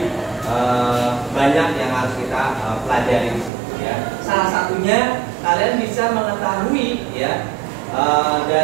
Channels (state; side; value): drops out; left; at 3.5 s